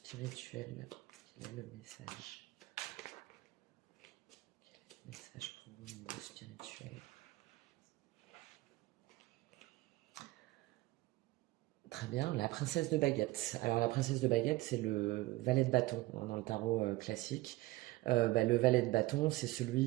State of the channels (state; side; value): quieter; left; 19.0 dB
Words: quel est le message? Quel est le message pour vous au niveau spirituel? Très bien, la princesse de baguette. Alors la princesse de baguette, c'est le valet de bâton hein, dans le tarot classique. Bah, le valet de bâton, c'est